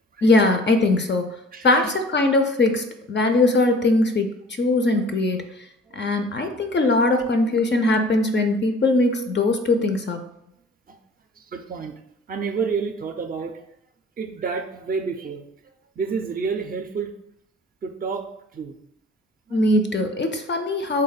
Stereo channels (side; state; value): both; normal; correlation 0.47